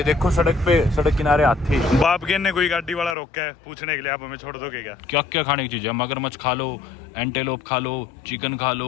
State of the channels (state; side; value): drops out; right; at 3.2 s